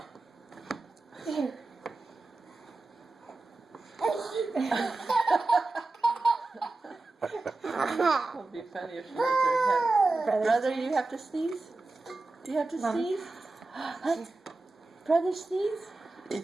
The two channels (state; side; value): quieter; left; 3.3 dB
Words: Here. It would be funny if she hit her head. Brother, you have to sneeze? Do you have to Mommy. sneeze? Huh? Brother, sneeze?